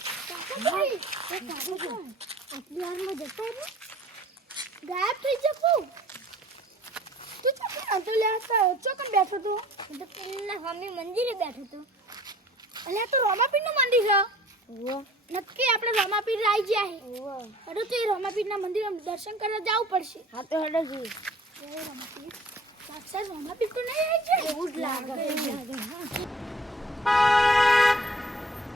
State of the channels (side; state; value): both; normal; correlation 0.50